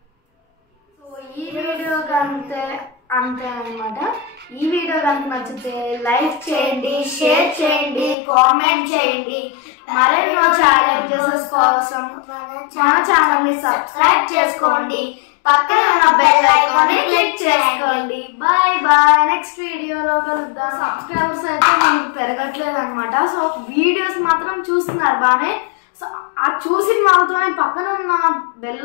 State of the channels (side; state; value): right; drops out; at 8.2 s